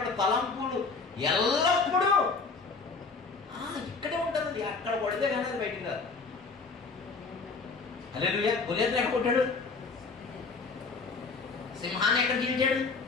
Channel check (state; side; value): quieter; right; 4.4 dB